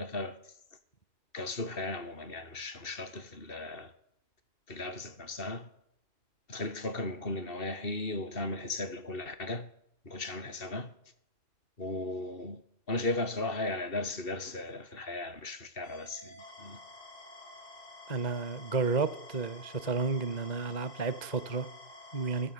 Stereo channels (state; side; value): late; right; 2.7 ms